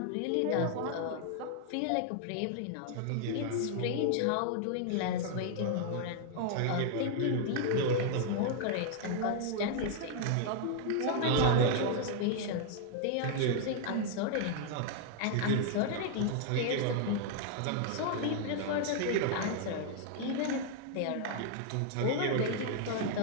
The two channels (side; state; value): both; different; correlation 0.00